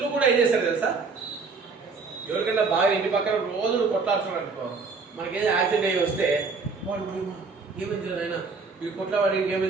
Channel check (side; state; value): left; quieter; 4.5 dB